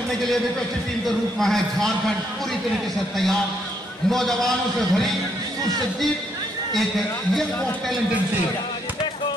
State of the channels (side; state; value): both; normal; correlation 0.73